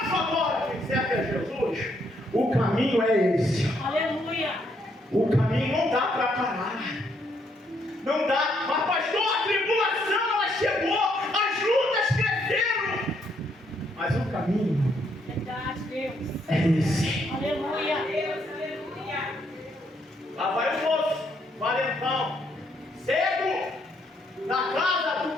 agora? Quem serve a Jesus, o caminho é esse. Aleluia. O caminho não dá para parar. Não dá. Mas, pastor, a tribulação ela chegou, as lutas cresceram. Mas o caminho é esse. Aleluia. Lá vai o moço, valentão, cego, na casa do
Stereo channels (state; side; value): normal; both; correlation 0.73